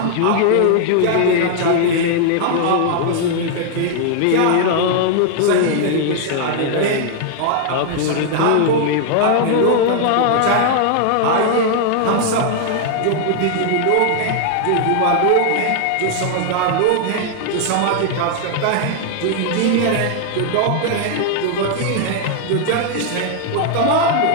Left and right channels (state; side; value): different; both; correlation 0.00